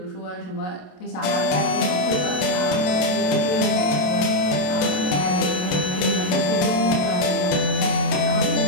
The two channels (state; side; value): late; right; 27 ms